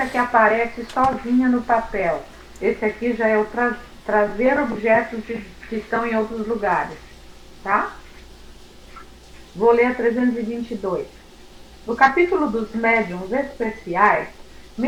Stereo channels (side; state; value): both; identical; correlation 1.00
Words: que aparece sozinha no papel. Esse aqui já é o trazer objetos que estão em outros lugares. Tá? Vou ler a 322. No capítulo dos médiuns especiais,